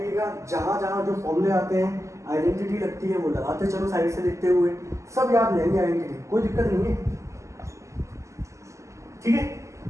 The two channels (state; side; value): late; left; 0.15 ms